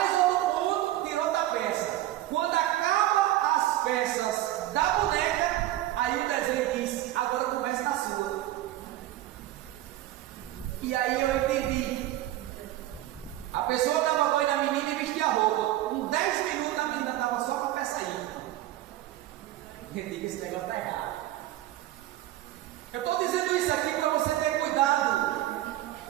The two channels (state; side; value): quieter; left; 14.7 dB